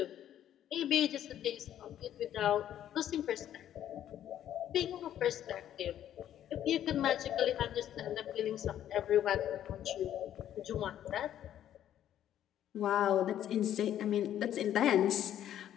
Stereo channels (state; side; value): quieter; right; 11.1 dB